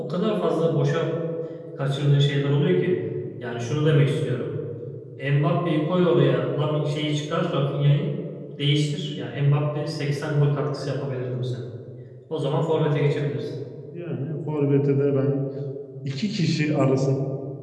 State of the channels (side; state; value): both; identical; correlation 1.00